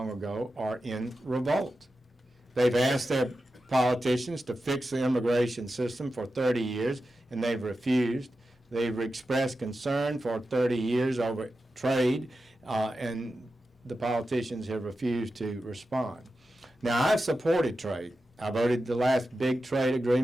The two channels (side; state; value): both; normal; correlation 0.91